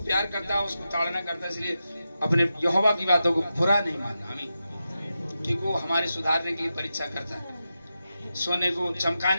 प्यार करता है उसको ताड़ना करता है। इसलिए अपने यहोवा की बातों को बुरा नहीं मानना। आमीन। क्योंकि वो हमारे सुधारने के लिए परीक्षा करता है। सोने को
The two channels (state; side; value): inverted; both; correlation -0.90